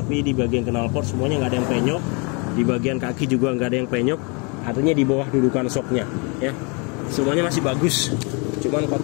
di bagian knalpot semuanya nggak ada yang penyok, di bagian kaki juga nggak ada yang penyok, artinya di bawah dudukan shocknya ya. Semuanya masih bagus, cuman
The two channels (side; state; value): right; quieter; 32.4 dB